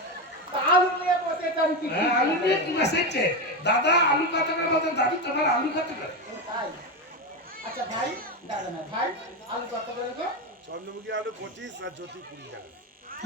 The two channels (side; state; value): both; normal; correlation 0.14